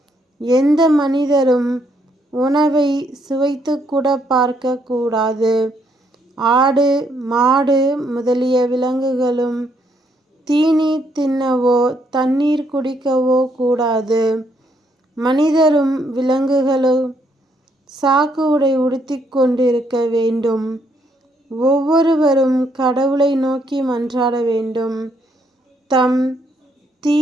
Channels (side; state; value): both; normal; correlation 0.72